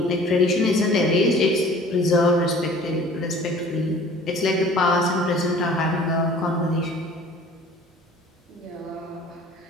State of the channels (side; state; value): both; normal; correlation 0.48